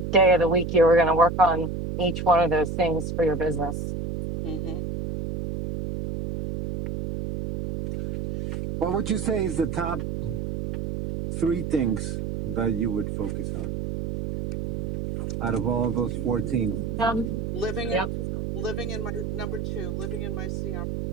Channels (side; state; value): right; noise; hum, 4 dB below the sound